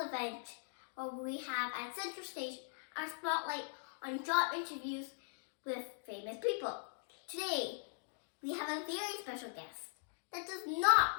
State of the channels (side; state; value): right; silent; digital silence